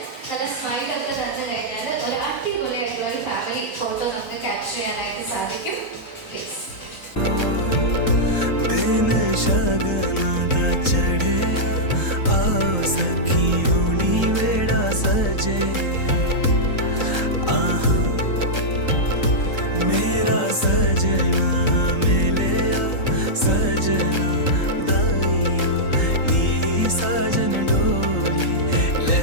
നല്ല സ്മൈലൊക്കെ തന്നു കഴിഞ്ഞാൽ ഒരു അടിപൊളിയായിട്ടുള്ള ഒരു ഫാമിലി ഫോട്ടോ നമുക്ക് ക്യാപ്ചർ ചെയ്യാനായിട്ട് സാധിക്കും. പ്ലീസ്. मेरा सजना मिले सजना दाइयों नी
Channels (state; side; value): late; right; 3.8 ms